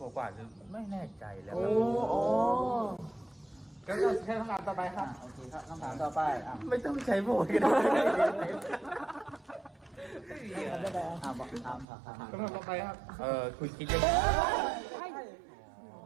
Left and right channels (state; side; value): drops out; left; at 11.9 s